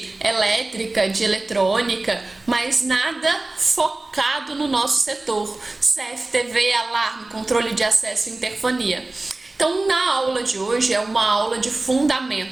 elétrica, de eletrônica, mas nada focado no nosso setor. CFTV, alarme, controle de acesso e interfonia. Então, na aula de hoje é uma aula de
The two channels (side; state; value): left; quieter; 3.0 dB